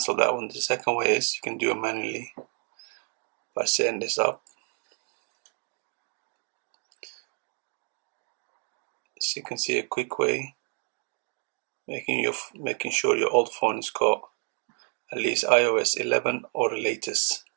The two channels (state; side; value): quieter; left; 39.2 dB